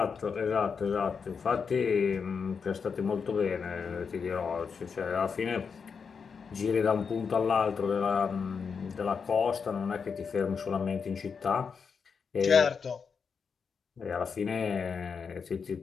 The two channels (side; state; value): right; quieter; 5.9 dB